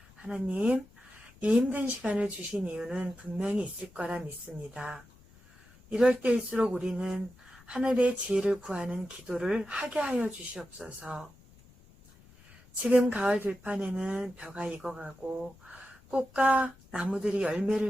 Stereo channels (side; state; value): left; noise; rumble, 25 dB below the sound